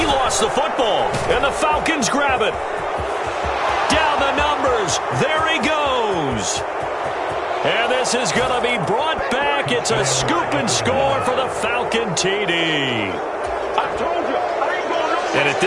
lost the football. And the Falcons grab it. Down the numbers. There he goes. And this is going to be brought back. It's a scoop and score for the Falcon TD. And at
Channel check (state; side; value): identical; both; correlation 1.00